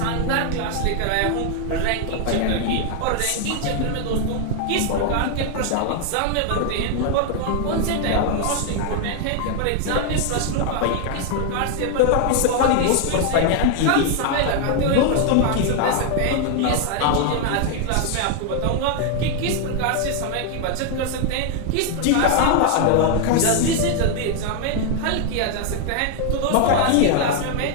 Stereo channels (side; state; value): both; different; correlation 0.00